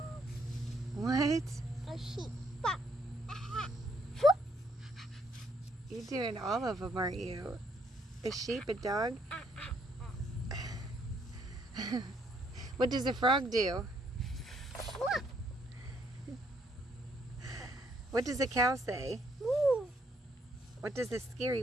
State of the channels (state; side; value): normal; both; correlation 0.70